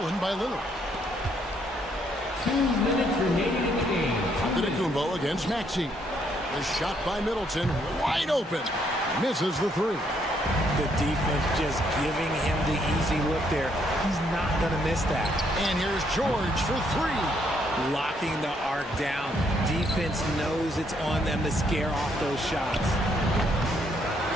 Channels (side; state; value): both; normal; correlation 0.71